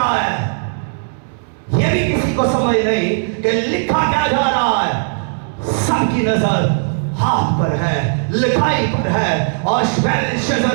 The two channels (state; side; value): silent; left; digital silence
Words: है ये भी किसी को समझ नहीं कि लिखा क्या जा रहा है। सबकी नजर हाथ पर है, लिखाई पर है और